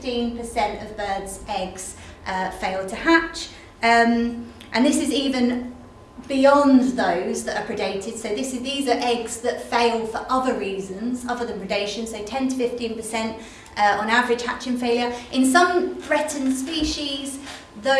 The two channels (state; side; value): identical; both; correlation 1.00